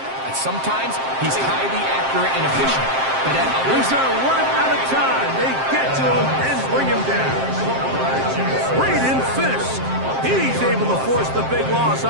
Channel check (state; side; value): late; left; 7.6 ms